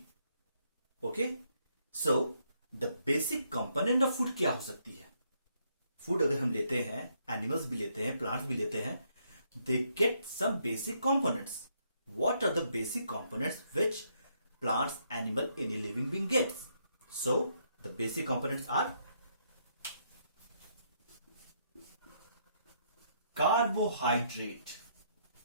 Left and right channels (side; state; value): both; inverted; correlation -0.73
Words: Okay? So the basic component of food क्या हो सकती है? फूड अगर हम लेते हैं, एनिमल्स भी लेते हैं, प्लांट्स भी लेते हैं, they get some basic components. What are the basic components which plants, animal, any living being gets? So the basic components are carbohydrate,